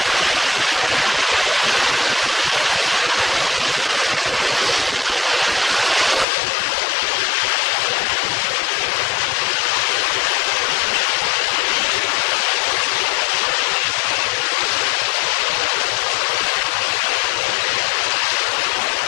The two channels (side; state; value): right; drops out; at 6.2 s